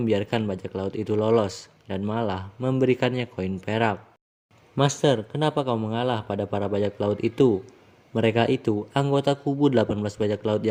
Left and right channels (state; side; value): identical; both; correlation 1.00